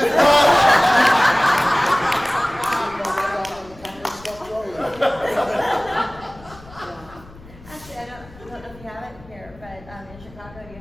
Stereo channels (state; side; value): noise; left; rumble, 21 dB below the sound